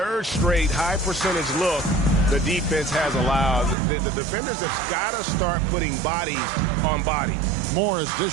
straight high percentage look the defense has allowed. The defenders have got to start putting bodies on bodies. Morris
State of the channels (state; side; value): drops out; left; at 3.8 s